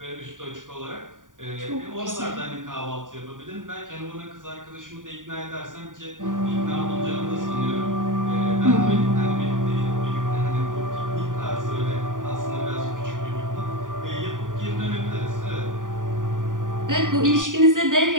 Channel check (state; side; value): late; left; 0.88 ms